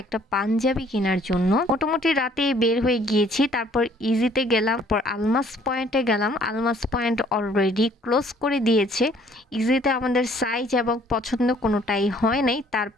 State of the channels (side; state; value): both; normal; correlation 0.59